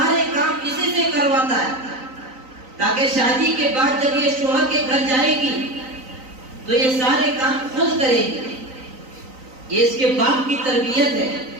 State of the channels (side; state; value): left; late; 3.9 ms